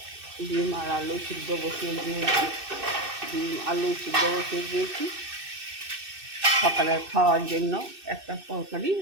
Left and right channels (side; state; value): left; late; 2.6 ms